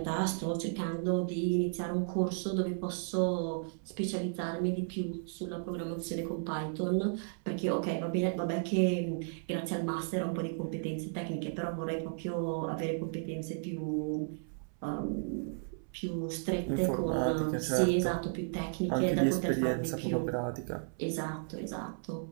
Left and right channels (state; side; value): silent; left; 55 dB below the other